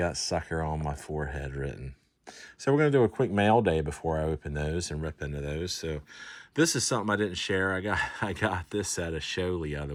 sucker on my forehead written. So we're going to do a quick mail day before I open those and rip into those. So this is something I didn't share. I got this at a show the other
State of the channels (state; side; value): identical; both; correlation 1.00